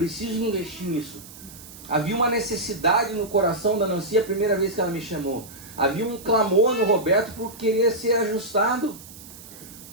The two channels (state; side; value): noise; right; hiss, 18 dB below the sound